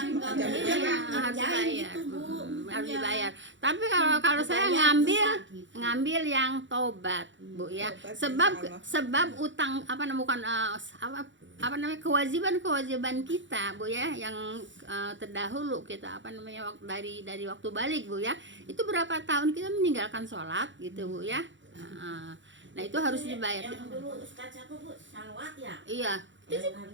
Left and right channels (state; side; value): late; left; 0.54 ms